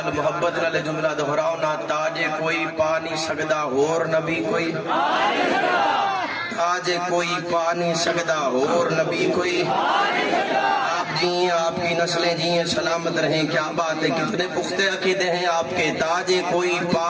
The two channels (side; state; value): both; identical; correlation 1.00